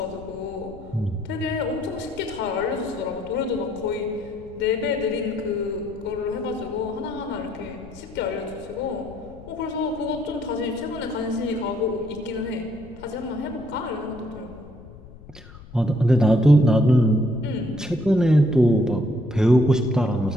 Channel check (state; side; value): noise; left; rumble, 19 dB below the sound